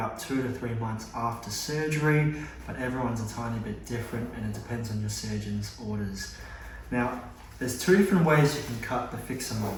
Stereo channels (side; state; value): both; identical; correlation 1.00